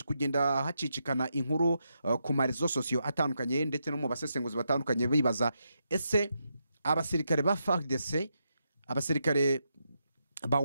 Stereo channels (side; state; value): both; inverted; correlation -0.83